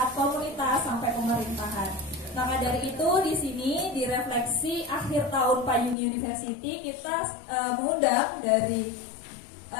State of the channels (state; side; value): drops out; right; at 6.0 s